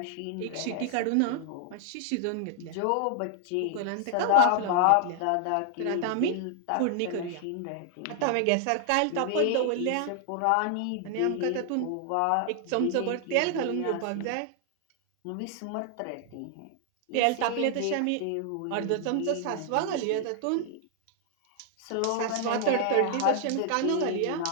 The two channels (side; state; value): both; different; correlation 0.00